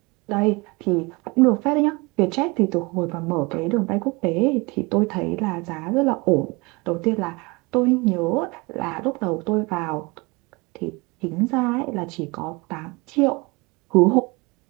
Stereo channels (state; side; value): quieter; left; 26.1 dB